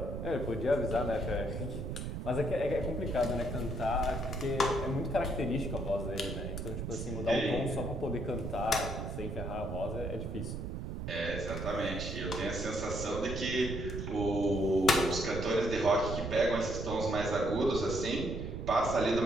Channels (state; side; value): noise; right; rumble, 5 dB below the sound